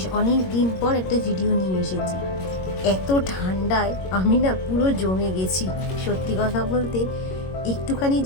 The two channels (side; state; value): right; late; 22 ms